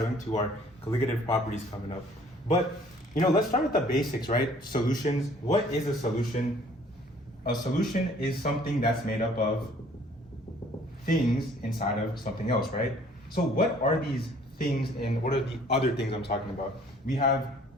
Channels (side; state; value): both; normal; correlation 0.56